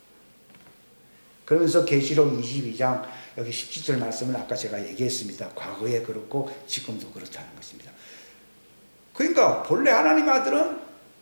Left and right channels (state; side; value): inverted; both; correlation -1.00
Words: 그러면서 계시록 22장 여기 17절 말씀은 아까 제가 얘기했습니다. 과거에 그렇고 지금도 그렇다는 것입니다. 그러니까 본래 하나님 아들은